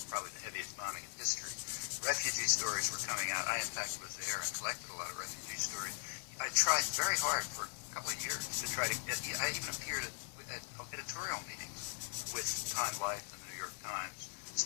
probably the heaviest bombing in history. Refugee stories were coming out. I, in fact, was there and collected a lot of refugee stories. I tried very hard for a couple of years to try to get, I even appeared at editorial meetings with Time Life and the New York Times,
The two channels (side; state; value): right; silent; 51 dB below the other